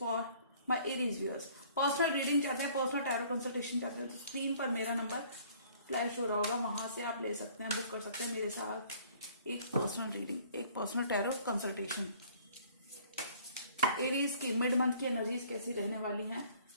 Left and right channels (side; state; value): both; inverted; correlation -0.55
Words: my Aries viewers. Personal reading चाहते हैं, पर्सनल टैरो कंसल्टेशन चाहते हैं तो स्क्रीन पर मेरा नंबर फ्लैश हो रहा होगा, वहां से आप ले सकते हैं, बुक कर सकते हैं मेरे साथ एक पर्सनल रीडिंग, एक पर्सनल टैरो कंसल्टेशन। एरीज की मिड मंथ की एनर्जीज कैसी रहने वाली हैं